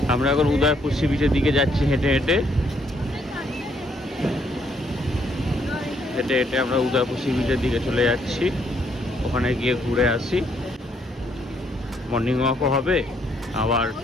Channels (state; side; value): normal; both; correlation 0.70